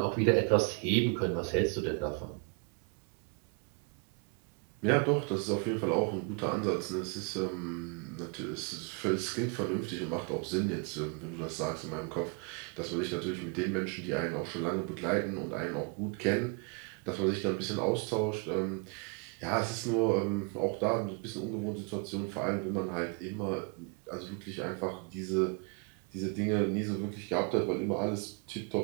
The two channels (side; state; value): left; quieter; 34.8 dB